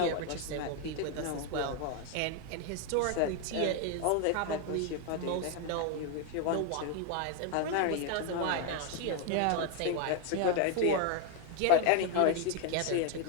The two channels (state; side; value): different; both; correlation 0.01